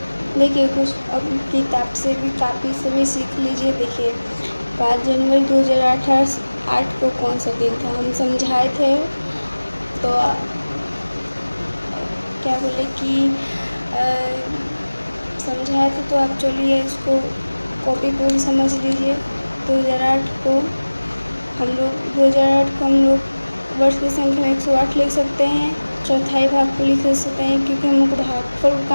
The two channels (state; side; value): inverted; both; correlation -1.00